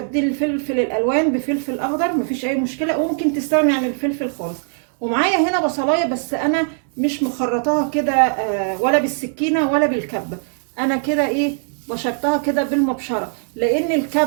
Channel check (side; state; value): left; silent; 64 dB below the other